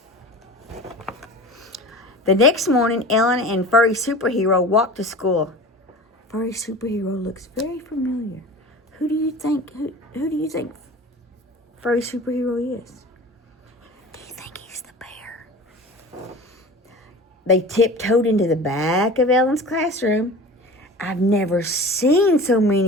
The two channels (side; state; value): both; normal; correlation 0.37